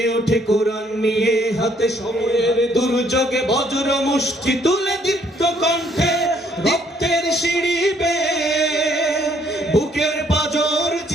ওঠে কোরআন নিয়ে, হাতে সময়ের দুর্যোগে বজ্র মুষ্টি তুলে দীপ্ত কণ্ঠে রক্তের সিঁড়ি বেয়ে, বুকের পাঁজর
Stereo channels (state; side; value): normal; both; correlation 0.66